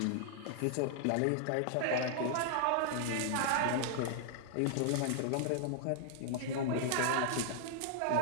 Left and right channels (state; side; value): different; both; correlation -0.01